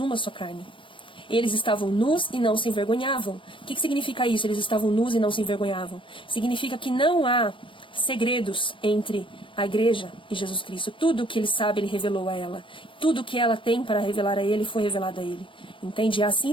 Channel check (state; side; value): late; right; 0.25 ms